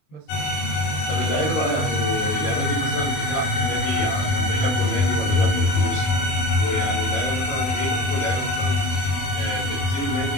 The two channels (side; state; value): right; late; 21 ms